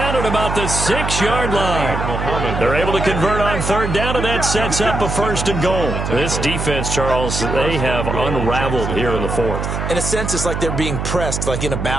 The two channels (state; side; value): noise; right; hum, 3 dB below the sound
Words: at about the 6-yard line. They're able to convert on 3rd down, and that sets up a 1st and goal. This defense, Charles, they have unraveled here in the 4th. In a sense, it's like they're being pressed like in a